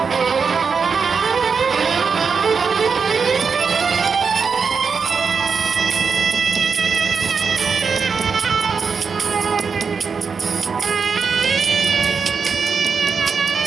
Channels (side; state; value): left; quieter; 5.6 dB